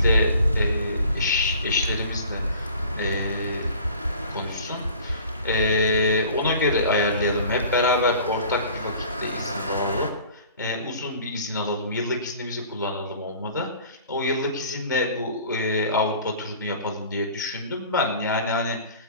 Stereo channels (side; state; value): both; inverted; correlation -0.47